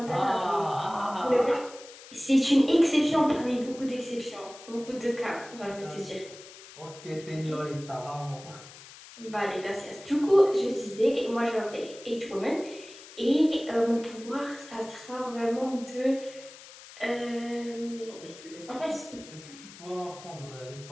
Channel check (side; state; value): left; noise; hiss, 18 dB below the sound